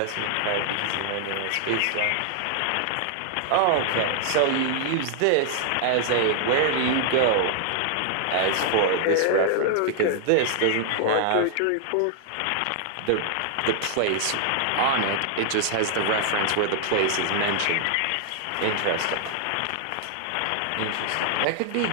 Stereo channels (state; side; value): different; both; correlation -0.01